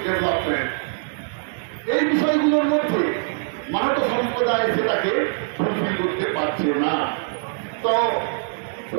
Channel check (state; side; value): silent; left; digital silence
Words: development. এই বিষয়গুলোর মধ্যে মানব সম্প্রদায় সেটাকে fulfil করতে পারছে না। তো